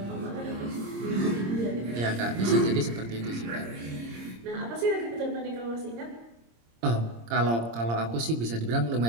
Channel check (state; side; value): late; left; 26 ms